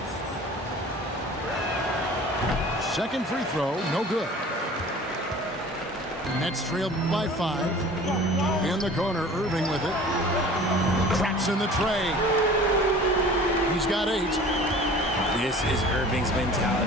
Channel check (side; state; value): both; normal; correlation 0.44